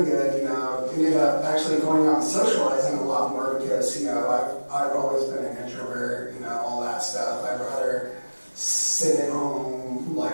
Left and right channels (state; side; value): inverted; both; correlation -1.00